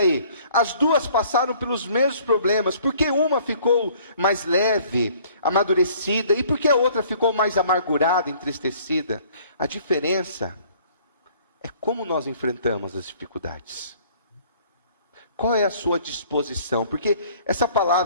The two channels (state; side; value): inverted; both; correlation -0.56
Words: as duas passaram pelos mesmos problemas. Por que uma ficou mais leve, amadurecida, e por que a outra ficou mais amargurada, entristecida? A diferença é como nós enfrentamos as dificuldades. Qual é a sua disposição? Porque essa